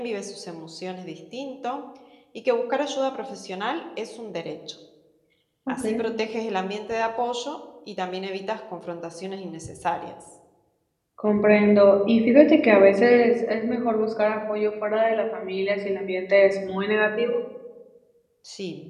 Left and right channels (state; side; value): identical; both; correlation 1.00